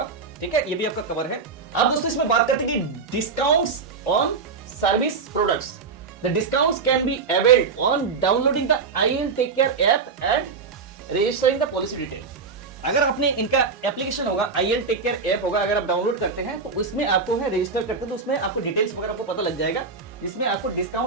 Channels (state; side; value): quieter; left; 4.9 dB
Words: ठीक है, ये भी आपका कवर है। अब दोस्तों इसमें बात करते हैं कि discounts on service products. The discounts can be availed on downloading the IL tech care app and registering the policy detail. अगर आपने इनका एप्लीकेशन होगा, IL टेक केयर ऐप होगा, अगर आप डाउनलोड करते हैं तो उसमें आपको है रजिस्टर करते हैं तो उसमें आपको डिटेल्स वगैरह आपको पता लग जाएगा, जिसमें आपको